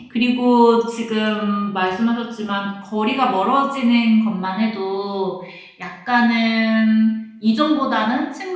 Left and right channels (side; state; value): both; identical; correlation 1.00